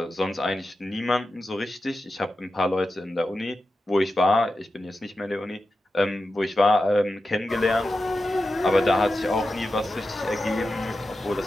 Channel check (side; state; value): both; normal; correlation 0.91